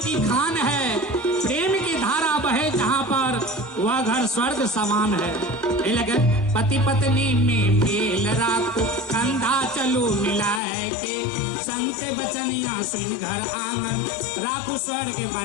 खान है, प्रेम की धारा बहे जहाँ पर वह घर स्वर्ग समान है। लगे पति पत्नी में मेल राखो, कंधा चलो मिलाए के, संत बचनिया सुन घर आंगन राखो स्वर्ग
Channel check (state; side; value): drops out; right; at 10.6 s